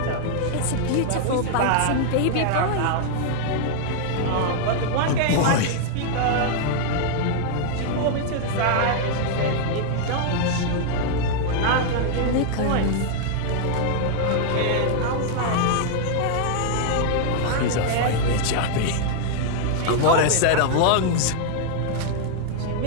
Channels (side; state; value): both; different; correlation 0.00